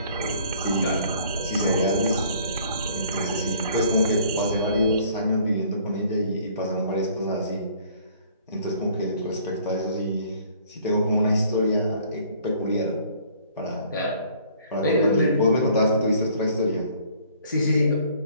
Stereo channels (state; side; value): inverted; both; correlation -0.57